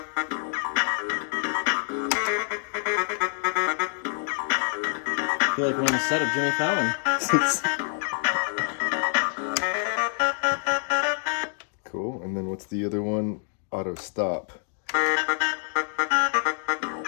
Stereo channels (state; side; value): silent; right; 61 dB below the other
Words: I feel like we're on the set of Jimmy Fallon. Cool. And then what's the other one? Auto stop.